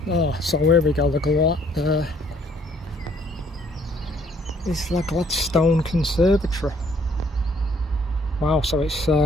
Oh, so here we go. It's like Gladstone Conservatory. Wow, so it's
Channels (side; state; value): both; normal; correlation 0.63